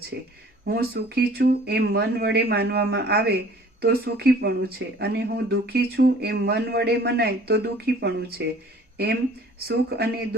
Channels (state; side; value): normal; both; correlation 0.51